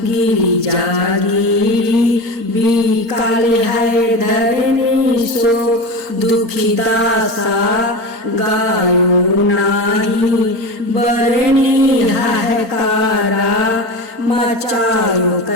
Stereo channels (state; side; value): late; left; 4.4 ms